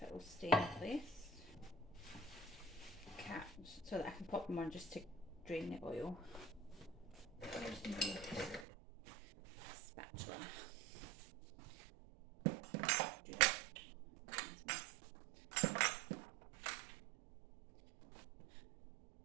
it will stay in place. So that I can pop them on just to drain the oil. There's my spatula.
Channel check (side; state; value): left; drops out; at 8.7 s